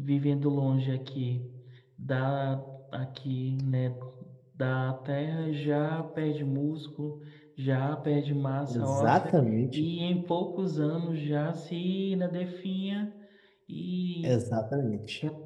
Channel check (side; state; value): both; identical; correlation 1.00